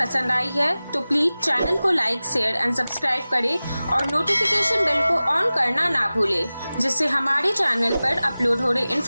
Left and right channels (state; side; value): inverted; both; correlation -0.97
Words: आई है तो प्लीज चैनल को लाइक, शेयर एंड सब्सक्राइब करें और नोटिफिकेशन बेल को ऑन करना ना भूलें, जिससे हमारे चैनल पर अपलोड हो रहे